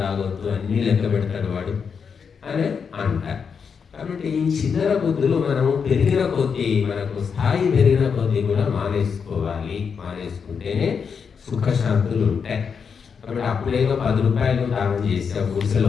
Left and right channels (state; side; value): quieter; right; 6.3 dB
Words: తాగొద్దు, అన్నీ లెక్క పెడతాడు వాడు అని అంటారు. కాబట్టి ఈ చిల్లర బుద్ధులు మనము పెరిగిన కొద్దీ, మనకు స్థాయి పెరిగిన కొద్దీ కూడా మానేసుకోవాలి. మానేసుకుంటేనే సుఖశాంతులు ఉంటాయి. కాబట్టి అప్పుడేదో 10 రూపాయలు దానం చేసావు గుడిసెలో